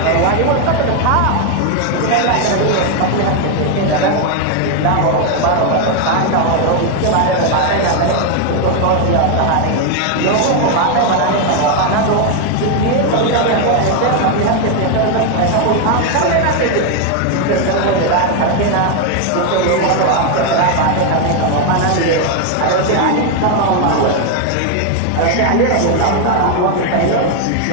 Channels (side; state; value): both; different; correlation 0.01